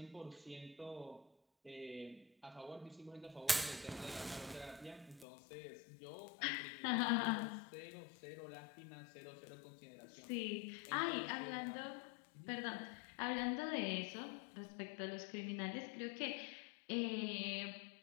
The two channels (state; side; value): drops out; right; at 5.2 s